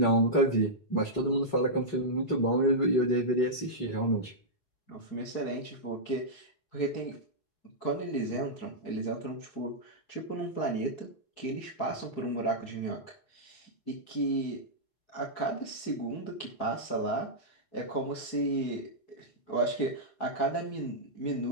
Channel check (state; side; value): late; right; 4.7 ms